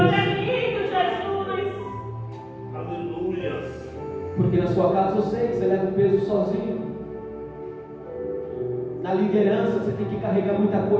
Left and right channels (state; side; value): identical; both; correlation 1.00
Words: Jesus. Aleluia! Porque na sua casa eu sei que você leva o peso sozinho. Na liderança você tem que carregar muita